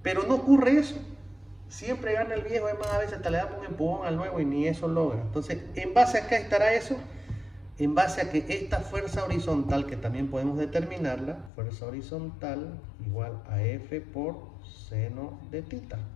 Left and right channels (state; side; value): drops out; right; at 11.5 s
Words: Pero no ocurre eso. Siempre gana el viejo, además a veces hasta le damos un empujón al nuevo y ni eso logra. Entonces, en base a qué estará eso, en base a que esta fuerza horizontal, que también podemos determinarla, fuerza horizontal igual a F por seno de tita,